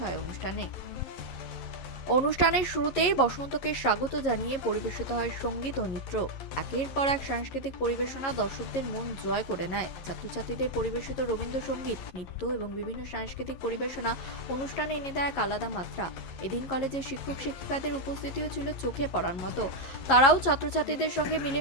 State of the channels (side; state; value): right; late; 11 ms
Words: হয় অনুষ্ঠানে। অনুষ্ঠানের শুরুতেই বসন্তকে স্বাগত জানিয়ে পরিবেশিত হয় সঙ্গীত ও নৃত্য। একের পর এক সাংস্কৃতিক পরিবেশনা দর্শকদের মন জয় করে নেয়। ছাত্রছাত্রীদের পরিবেশিত রবীন্দ্রসঙ্গীত, নৃত্য এবং বিভিন্ন সাংস্কৃতিক পরিবেশনা অনুষ্ঠানে এনে দেয় এক আলাদা মাত্রা। এদিন কলেজের শিক্ষক শিক্ষিকাদের উপস্থিতিও ছিল চোখে পড়ার মতো। তারাও ছাত্রছাত্রীদের সঙ্গে